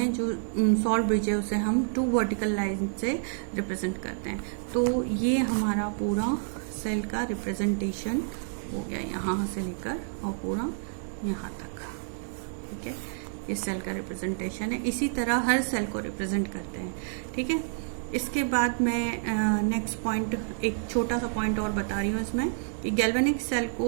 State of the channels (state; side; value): silent; left; digital silence